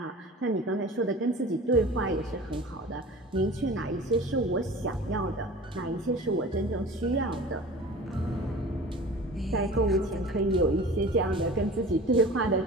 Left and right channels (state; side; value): normal; both; correlation 0.39